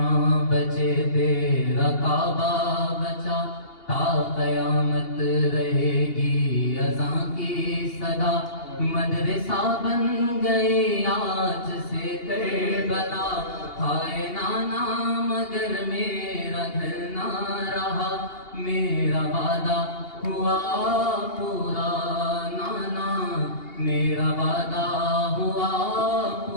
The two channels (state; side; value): late; right; 2.8 ms